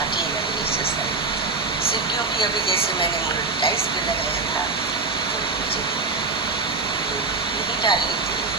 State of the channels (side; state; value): left; quieter; 3.9 dB